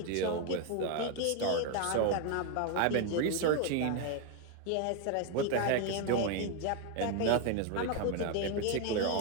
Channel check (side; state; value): both; different; correlation 0.01